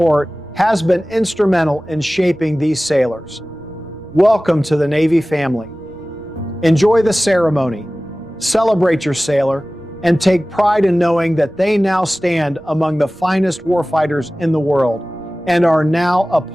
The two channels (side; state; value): right; noise; rumble, 27 dB below the sound